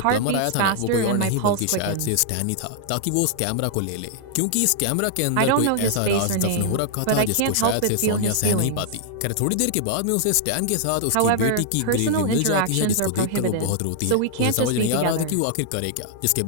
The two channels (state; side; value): different; both; correlation -0.01